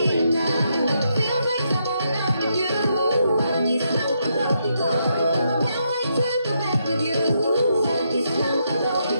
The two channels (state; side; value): inverted; both; correlation -0.79